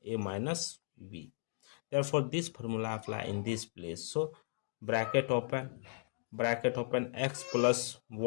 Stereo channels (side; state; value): right; silent; digital silence